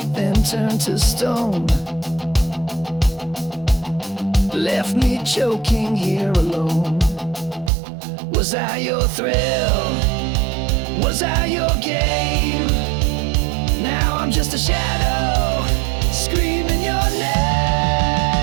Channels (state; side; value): drops out; left; at 7.7 s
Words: then turned to stone, left me choking here alone. Was I your thrill? Was I your game? Now I'm just a shadow, screaming your name.